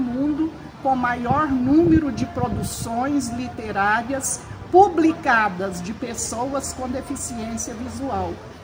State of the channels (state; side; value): identical; both; correlation 1.00